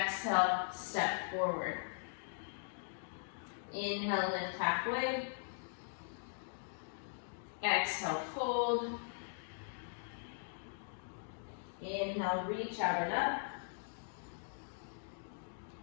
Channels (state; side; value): silent; right; digital silence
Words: step forward. Inhale, lift halfway. Exhale, fold. Inhale, reach out and up.